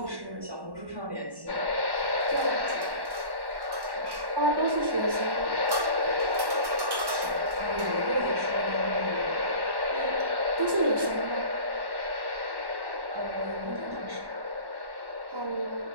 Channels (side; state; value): left; late; 1.1 ms